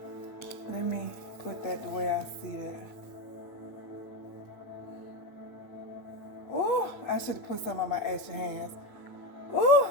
Let me put that the way I see it. Ooh, I should have put some on my ashy hands. Ooh,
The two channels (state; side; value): late; right; 8.4 ms